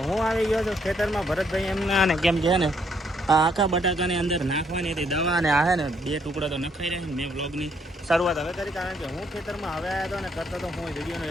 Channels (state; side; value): normal; both; correlation 0.71